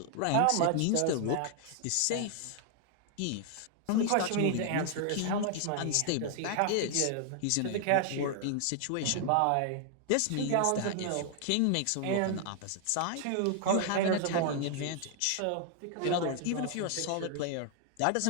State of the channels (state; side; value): different; both; correlation 0.00